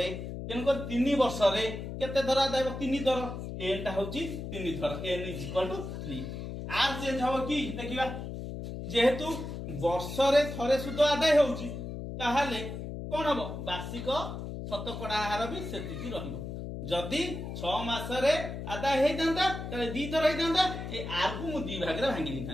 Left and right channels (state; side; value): noise; left; hum, 7 dB below the sound